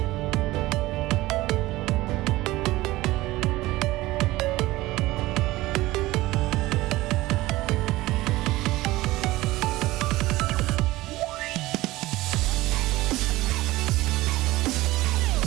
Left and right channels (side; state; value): left; quieter; 18.4 dB